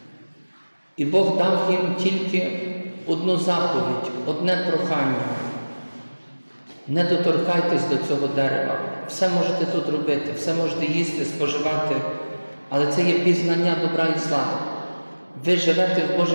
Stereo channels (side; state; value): both; inverted; correlation -1.00